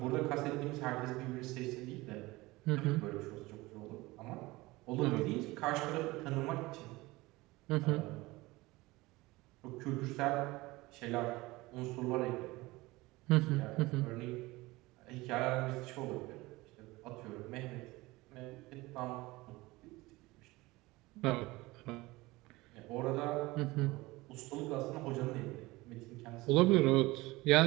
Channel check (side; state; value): left; quieter; 20.8 dB